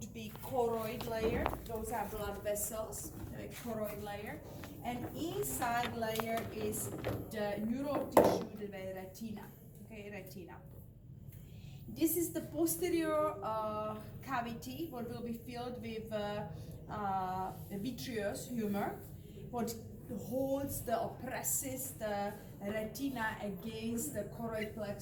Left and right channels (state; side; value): identical; both; correlation 1.00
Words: be choroid layer. Those are blood vessels, the choroid layer. And inside layer is the neural tissue, the retina, okay, retina. This is the posterior cavity, what will be filled with vitreous humor, what holds or presses the retina against the choroid